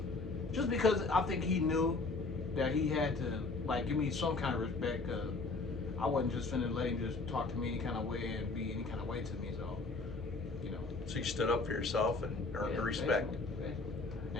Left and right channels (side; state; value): right; quieter; 3.7 dB